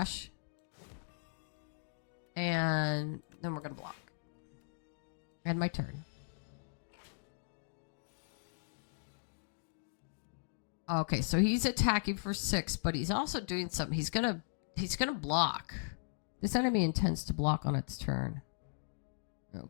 And then we're going to block. End my turn. Okay, so he's attacking for 6, but he's also doing something. He's gonna block. This enemy intends to block on its turn.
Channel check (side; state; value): right; silent; digital silence